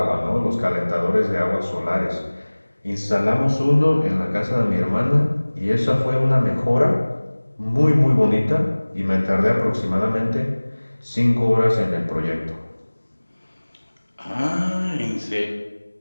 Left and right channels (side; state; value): both; inverted; correlation -1.00